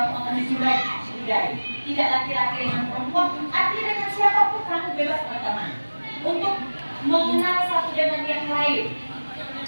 akan disudahi. Tidak laki-laki dengan perempuan, artinya dengan siapapun kamu bebas berteman untuk mengenal satu dengan yang lain.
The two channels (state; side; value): inverted; both; correlation -1.00